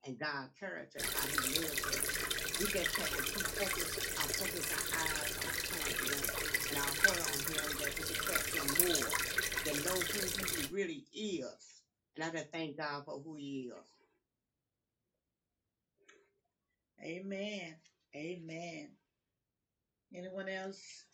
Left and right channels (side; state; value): both; identical; correlation 1.00